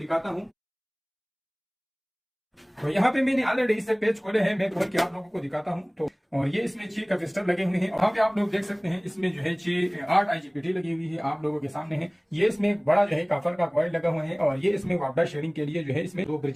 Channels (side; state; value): both; identical; correlation 1.00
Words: हूँ। तो यहाँ पे मैंने ऑलरेडी इससे पेज खोले हैं, मैं खोल के आप लोगों को दिखाता हूँ। तो और ये इसमें 6 कैपेसिटर लगे हुए हैं। वहाँ पे आप लोग देख सकते हैं इसमें जो है 8 IGBT लगी हुई है, आप लोगों के सामने है। ये इसमें एक बड़ा जो है कॉपर का कॉइल लगा हुआ है और ये इसमें वापडा शेयरिंग के लिए जो है इसमें 2